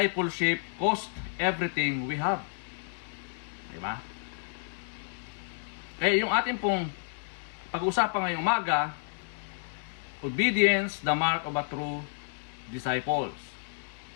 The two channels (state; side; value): silent; right; 57 dB below the other